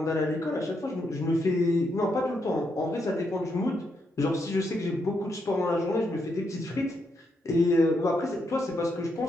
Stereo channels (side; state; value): both; normal; correlation 0.80